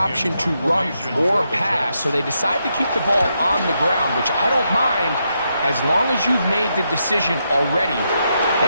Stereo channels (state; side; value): inverted; both; correlation -0.82